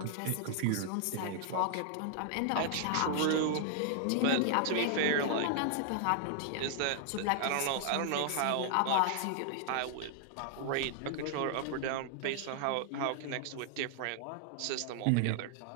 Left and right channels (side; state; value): both; different; correlation 0.00